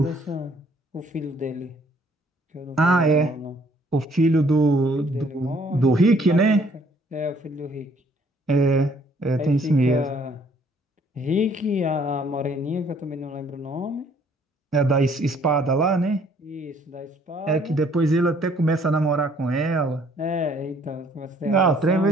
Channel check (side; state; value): both; normal; correlation 0.62